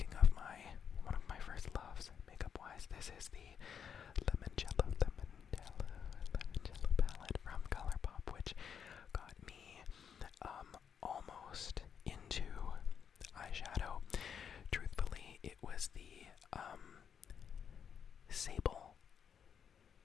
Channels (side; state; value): right; quieter; 7.5 dB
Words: of one of my first loves makeup wise, this is the Limoncello palette from ColourPop, which got me almost into eyeshadow. Truthfully, it was the Sable.